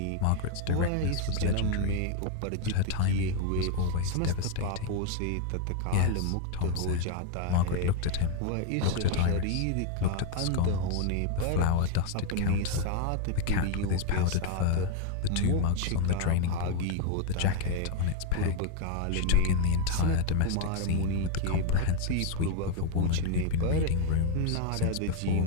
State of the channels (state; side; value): different; both; correlation 0.01